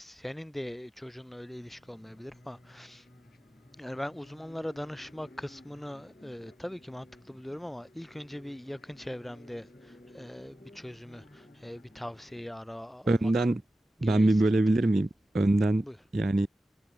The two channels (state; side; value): normal; both; correlation 0.93